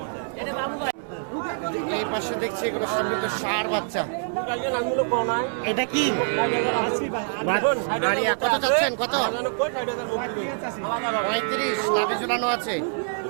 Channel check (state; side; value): silent; left; 62 dB below the other